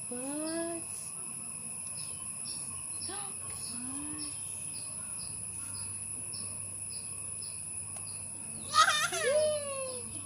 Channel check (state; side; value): identical; both; correlation 1.00